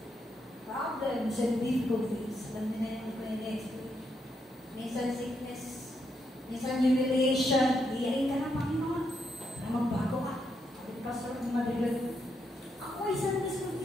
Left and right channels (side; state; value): both; normal; correlation 0.80